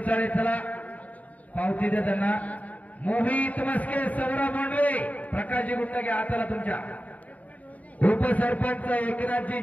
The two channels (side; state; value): right; late; 0.071 ms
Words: चला पावती दे त्यांना. मोहित मस्के, सौरभ भोंडवे, प्रकाशजी गुंड घ्या हाताला तुमच्या. उपसरपंच एकनाथजी